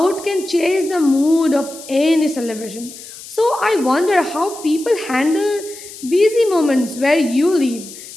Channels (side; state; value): left; noise; hiss, 15 dB below the sound